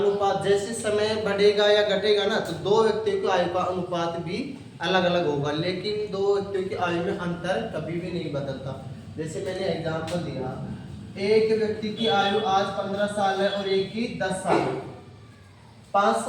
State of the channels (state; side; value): identical; both; correlation 1.00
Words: जैसे समय बढ़ेगा या घटेगा ना, तो दो व्यक्तियों की आयु का अनुपात भी अलग अलग होगा, लेकिन दो व्यक्तियों की आयु में अंतर कभी भी नहीं बदलता। जैसे मैंने एग्जांपल दिया, एक व्यक्ति की आयु आज 15 साल है और एक की 10 साल है। 5